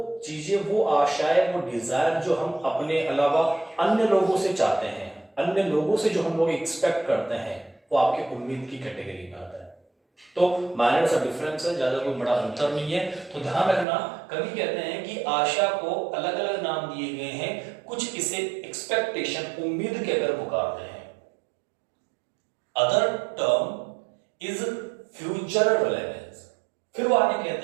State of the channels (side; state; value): left; drops out; at 13.9 s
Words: चीजें, वो आशाएं, वो डिजायर जो हम अपने अलावा अन्य लोगों से चाहते हैं, अन्य लोगों से जो हम लोग एक्सपेक्ट करते हैं, वो आपके उम्मीद की कैटेगरी में आता है। तो माइनर सा डिफरेंस है, ज्यादा कोई बड़ा अंतर नहीं है। तो ध्यान रखना, कवि कहते हैं कि आशा को अलग अलग नाम दिए गए हैं, कुछ इसे एक्सपेक्टेशन, उम्मीद कहकर पुकारते हैं। Other term is future relevance. फिर वो आगे